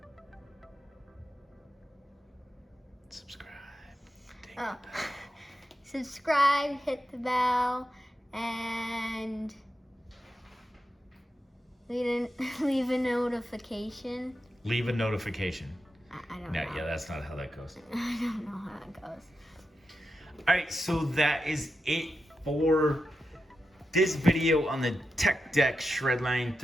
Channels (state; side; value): normal; both; correlation 0.88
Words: Subscribe. Oh. Subscribe, hit the bell, and Leave a notification. Leave a notification. I don't No, know. yeah, that's not how that goes. I don't know how it goes. All right, so that is it for this video on the Tech Deck Shredline